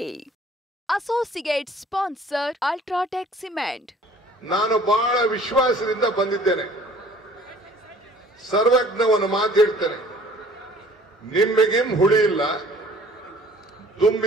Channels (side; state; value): both; normal; correlation 0.52